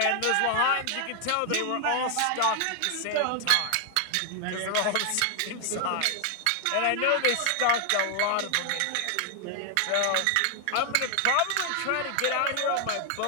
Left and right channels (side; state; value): both; different; correlation 0.00